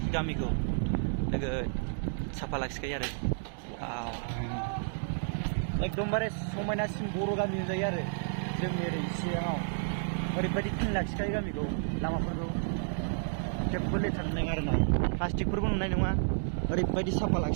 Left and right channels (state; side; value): silent; left; digital silence